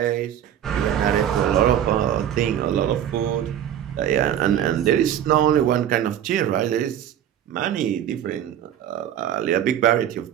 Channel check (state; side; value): quieter; left; 10.5 dB